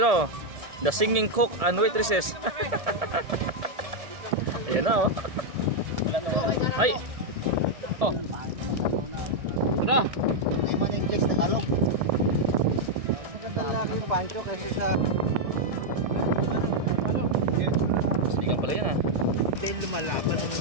oh. The singing cook and waitresses. Ayan na oh. Ay. Oh. Ano? Hindi man yung English Tagalog. Magandang laki yung pancho kasi sa... Sinigang pala yan ah. Hindi lumalaban.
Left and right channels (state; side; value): late; left; 1.7 ms